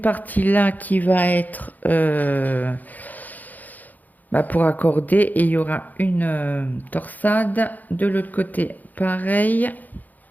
là qui va être pour accorder et il y aura une torsade. De l'autre côté, pareil.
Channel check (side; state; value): right; late; 0.082 ms